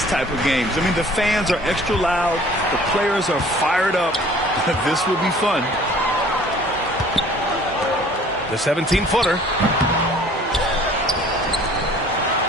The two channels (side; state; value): both; normal; correlation 0.52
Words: type of games. I mean, the fans are extra loud. The players are fired up. This will be fun. The 17-footer.